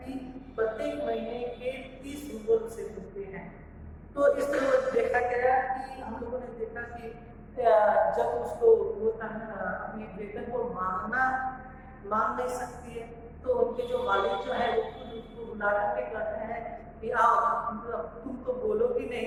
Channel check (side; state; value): both; identical; correlation 1.00